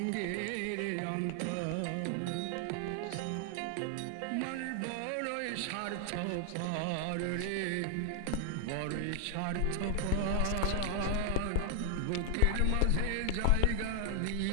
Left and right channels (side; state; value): both; different; correlation 0.00